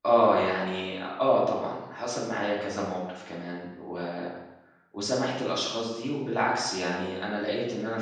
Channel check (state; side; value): identical; both; correlation 1.00